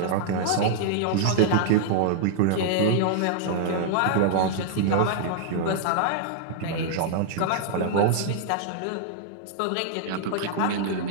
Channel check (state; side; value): different; both; correlation 0.00